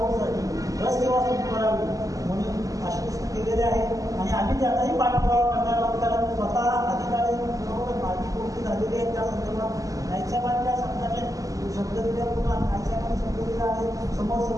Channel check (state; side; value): late; left; 0.17 ms